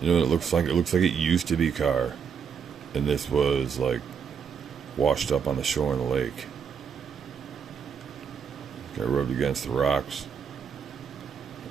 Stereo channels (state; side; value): quieter; left; 6.9 dB